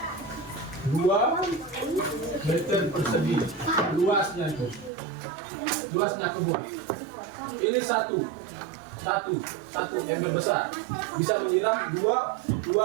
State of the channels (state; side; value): drops out; left; at 4.9 s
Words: 2 meter persegi luasnya itu, luasnya kebun. Ini satu ember besar bisa menyiram 2